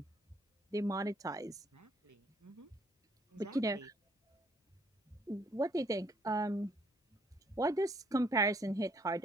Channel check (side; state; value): both; normal; correlation 0.67